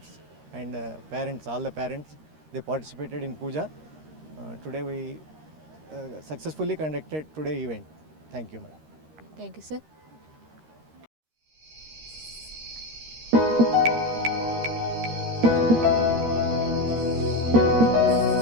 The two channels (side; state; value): left; late; 13 ms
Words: and parents, all the parents, they participated in puja. Today we successfully conducted today event. Thank you, ma'am. Thank you, sir.